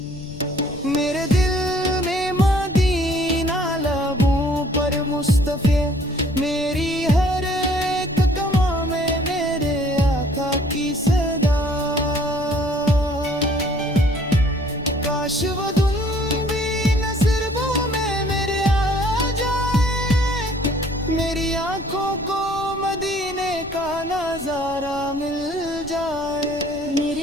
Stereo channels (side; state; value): left; noise; rumble, 17 dB below the sound